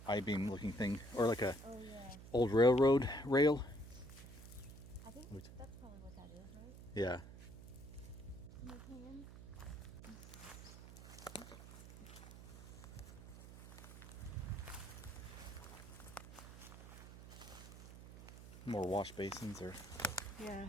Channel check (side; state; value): right; noise; hum, 14 dB below the sound